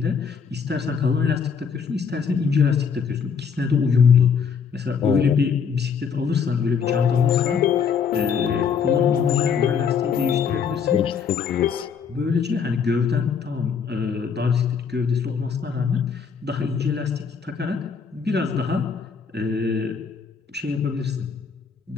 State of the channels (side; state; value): right; quieter; 6.4 dB